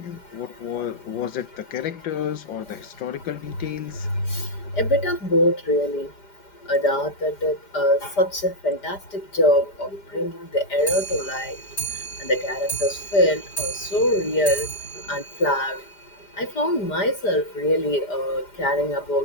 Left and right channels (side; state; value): right; late; 5.0 ms